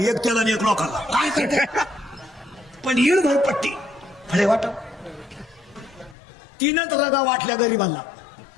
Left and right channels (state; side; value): drops out; right; at 6.2 s